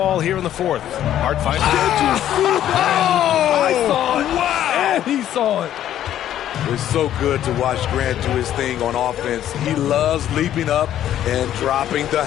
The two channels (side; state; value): right; quieter; 11.5 dB